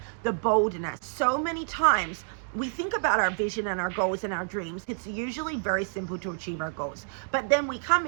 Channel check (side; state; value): left; silent; digital silence